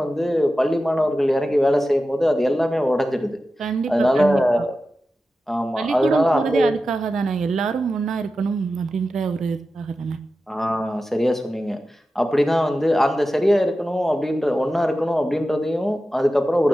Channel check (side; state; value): both; normal; correlation 0.93